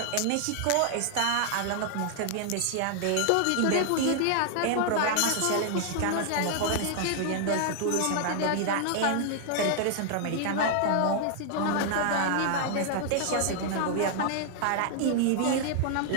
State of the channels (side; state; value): both; different; correlation -0.01